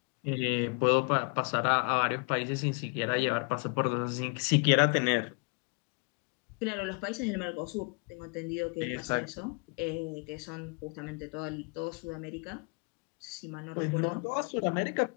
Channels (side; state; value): right; quieter; 35.3 dB